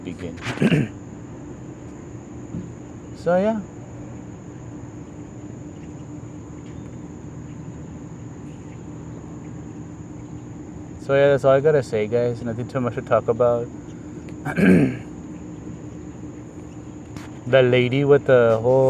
So yeah. So yeah, that's all I gotta say, guys. Nothing too much to talk about. The lady with the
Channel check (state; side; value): identical; both; correlation 1.00